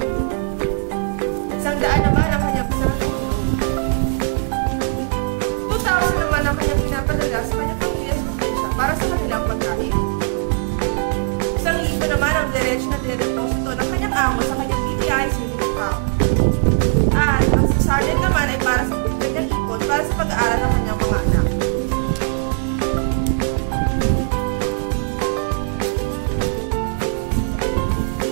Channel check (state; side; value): silent; left; 59 dB below the other